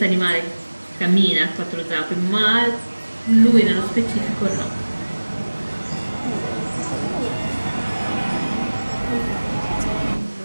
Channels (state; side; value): inverted; both; correlation -1.00